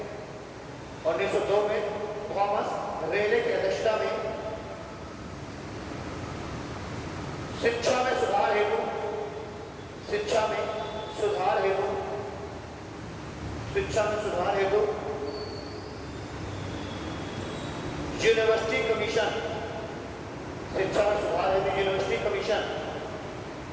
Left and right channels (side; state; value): both; identical; correlation 1.00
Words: 1902 में थॉमस रेले की अध्यक्षता में शिक्षा में सुधार हेतु